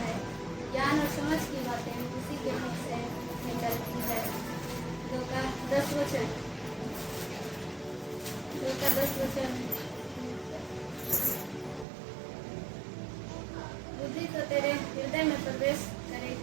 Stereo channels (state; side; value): drops out; left; at 11.9 s